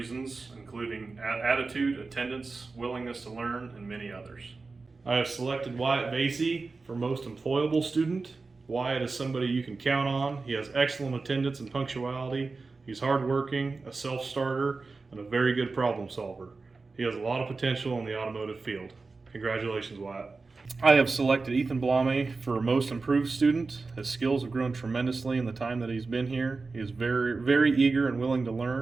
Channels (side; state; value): left; quieter; 4.0 dB